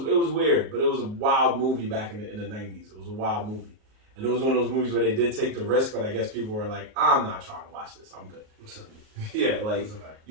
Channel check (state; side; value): late; left; 38 ms